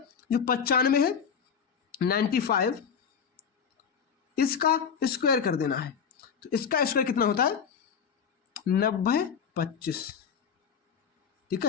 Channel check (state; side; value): quieter; right; 6.9 dB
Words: जो 95 है 95 इसका स्क्वायर कर देना है। तो इसका स्क्वायर कितना होता है, 90/25, ठीक